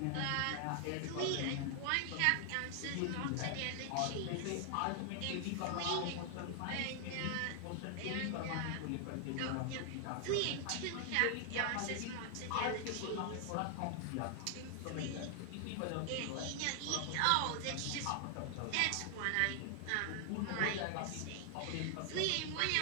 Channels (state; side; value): different; both; correlation 0.00